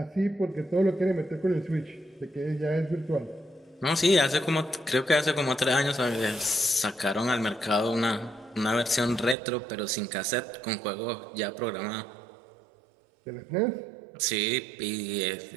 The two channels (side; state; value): left; drops out; at 9.3 s